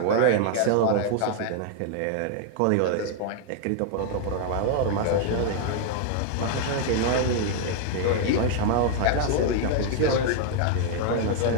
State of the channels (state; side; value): different; both; correlation 0.00